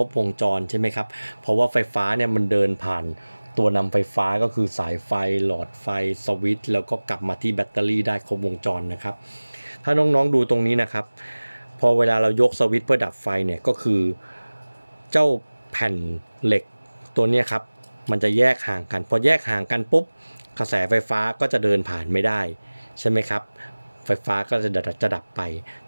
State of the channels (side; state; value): both; inverted; correlation -1.00